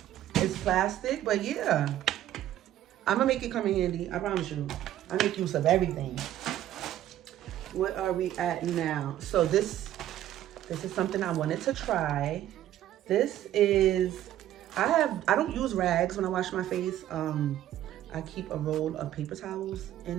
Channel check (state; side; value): quieter; left; 12.6 dB